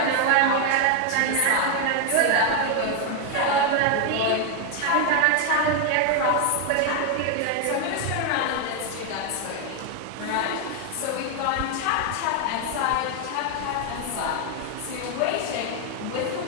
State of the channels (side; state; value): both; different; correlation 0.01